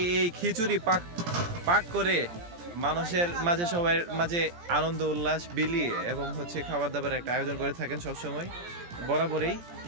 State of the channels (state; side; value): late; left; 17 ms